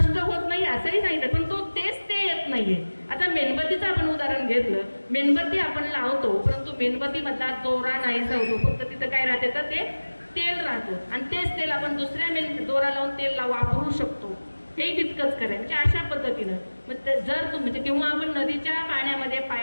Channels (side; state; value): both; inverted; correlation -1.00